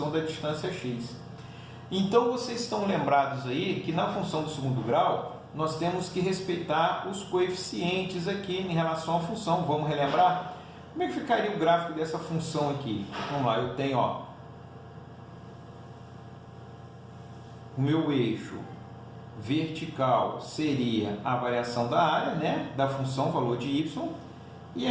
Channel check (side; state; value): both; identical; correlation 1.00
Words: da distância x. Então, vocês estão lembrados aí que na função do segundo grau, nós temos que respeitar os coeficientes aqui em relação à função. Vamos relembrar? Como é que ficaria o gráfico dessa função aqui? Vamos lá, eu tenho, ó, o meu eixo vertical seria a variação da área, né, da função valor de y, e